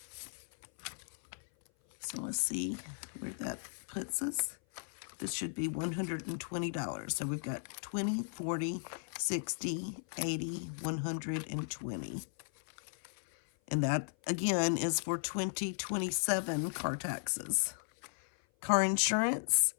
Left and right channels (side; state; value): right; silent; 54 dB below the other